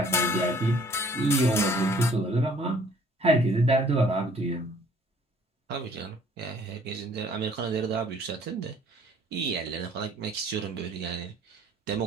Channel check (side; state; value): both; normal; correlation 0.57